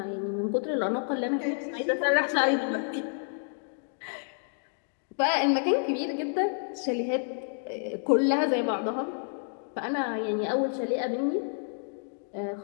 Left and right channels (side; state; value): right; silent; digital silence